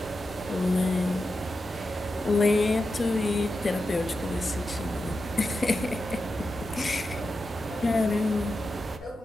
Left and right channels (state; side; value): normal; both; correlation 0.90